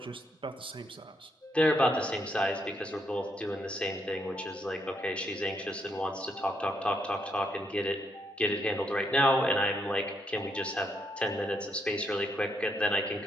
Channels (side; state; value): both; normal; correlation 0.76